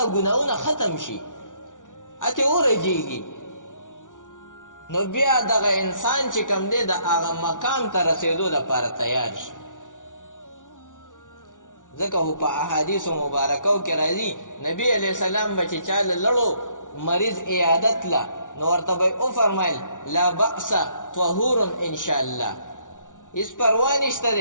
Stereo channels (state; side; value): late; right; 0.87 ms